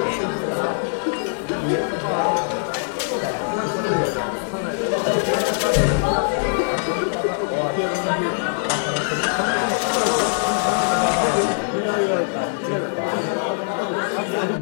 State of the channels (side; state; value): right; silent; 64 dB below the other